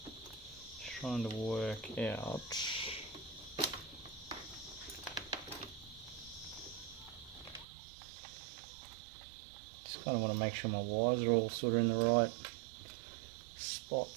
Trying to work out. Just kind of want to make sure my wires are all sort of in the right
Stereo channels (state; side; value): drops out; left; at 7.7 s